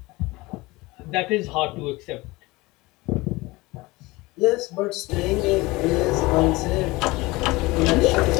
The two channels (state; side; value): quieter; right; 21.9 dB